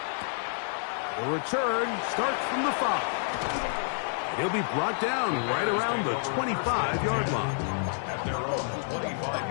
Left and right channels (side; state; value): right; silent; digital silence